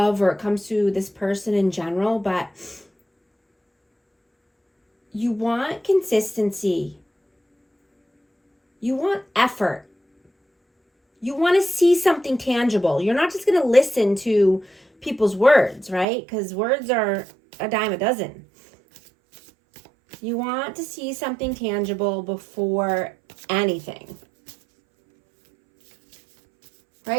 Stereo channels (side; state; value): left; drops out; at 16.1 s